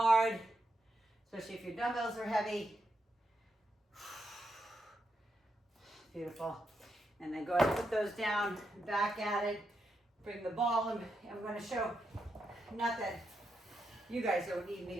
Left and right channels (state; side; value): normal; both; correlation 0.83